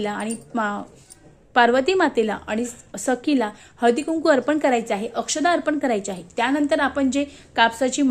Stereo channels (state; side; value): identical; both; correlation 1.00